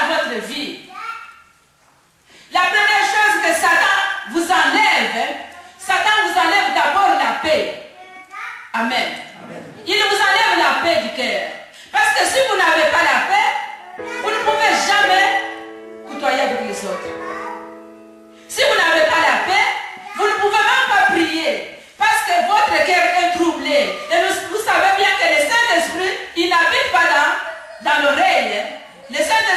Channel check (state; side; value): identical; both; correlation 1.00